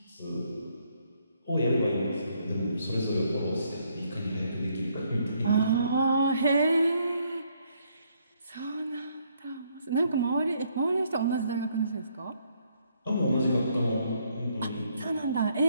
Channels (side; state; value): both; inverted; correlation -0.71